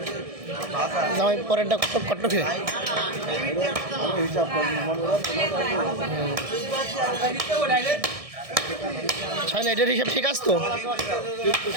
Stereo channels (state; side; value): late; left; 1.6 ms